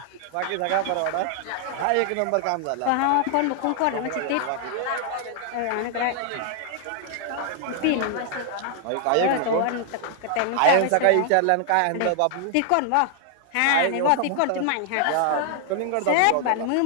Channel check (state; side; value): different; both; correlation 0.00